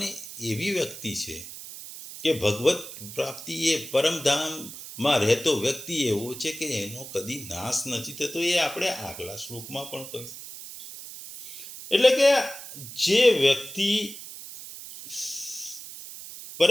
એવી વ્યક્તિ છે કે ભગવત પ્રાપ્તિ એ પરમધામમાં રહેતો વ્યક્તિ એવો છે કે એનો કદી નાશ નથી થતો. એ આપણે આગલા શ્લોકમાં પણ કહ્યું. એટલે કે જે વ્યક્તિ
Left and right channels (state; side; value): noise; right; hiss, 12 dB below the sound